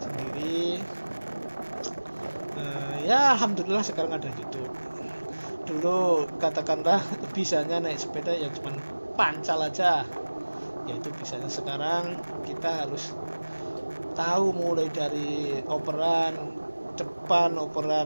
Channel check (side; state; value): both; inverted; correlation -1.00